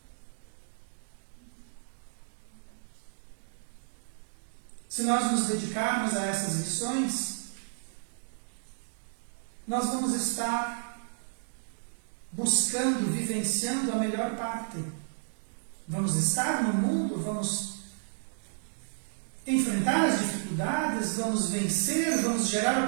Se nós nos dedicarmos a essas lições, nós vamos estar buscando, vivenciando a melhor parte. Vamos estar no mundo, vamos enfrentar as dificuldades, vamos vencer, vamos gerar o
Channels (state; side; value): silent; left; digital silence